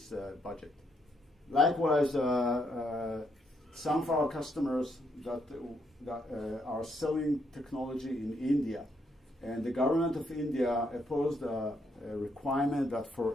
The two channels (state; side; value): normal; both; correlation 0.75